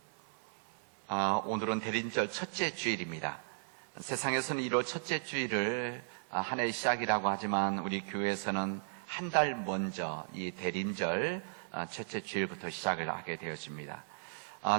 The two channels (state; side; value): silent; left; 54 dB below the other